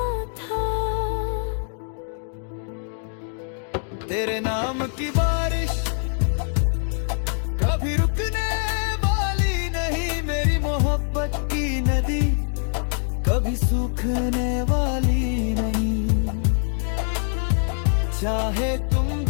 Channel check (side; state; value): right; silent; 63 dB below the other